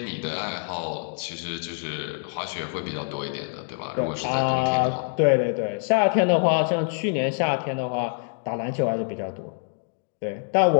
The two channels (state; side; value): silent; right; 61 dB below the other